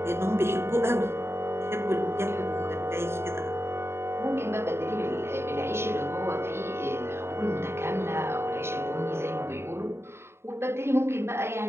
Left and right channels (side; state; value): left; late; 0.12 ms